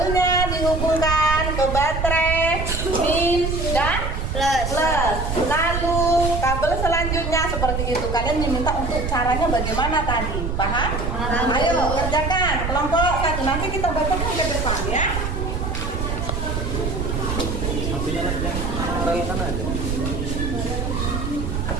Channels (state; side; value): noise; right; rumble, 2 dB below the sound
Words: dihubungkan ke baterai min dan plus. Lalu kabel selanjutnya seperti itu. Kalian diminta untuk caranya bagaimana tadi? Paham? Ayo kerjakan kelompok 1. Nanti kita bacakan ke depan ya.